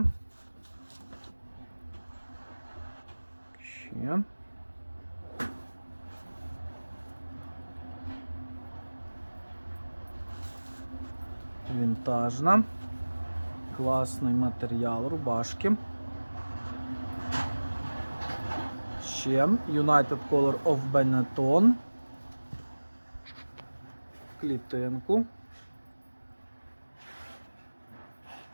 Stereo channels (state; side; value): inverted; both; correlation -1.00